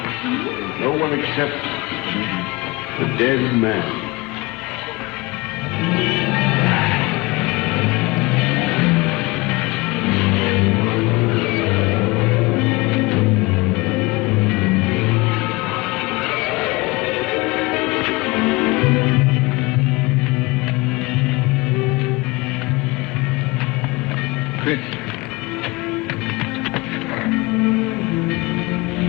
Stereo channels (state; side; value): quieter; right; 23.5 dB